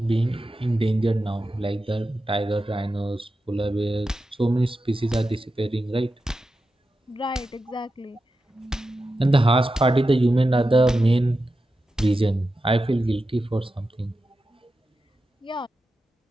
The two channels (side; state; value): both; normal; correlation 0.91